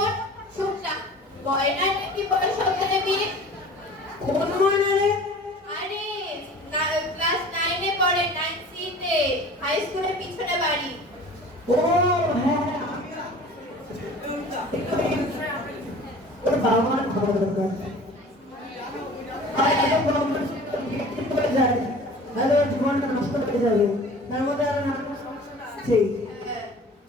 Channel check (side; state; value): both; normal; correlation 0.43